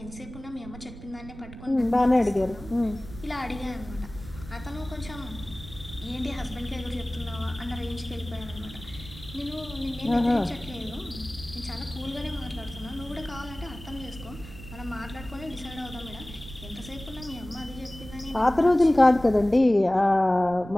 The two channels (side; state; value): right; noise; rumble, 15 dB below the sound